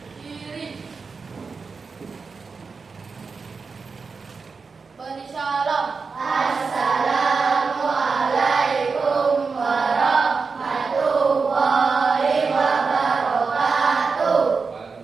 Kiri. Beri salam. Assalamualaikum warahmatullahi wabarakatuh.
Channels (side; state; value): left; quieter; 4.8 dB